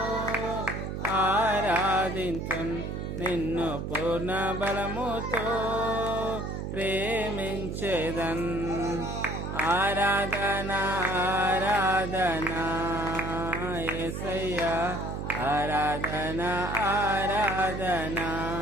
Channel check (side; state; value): right; noise; hum, 5 dB below the sound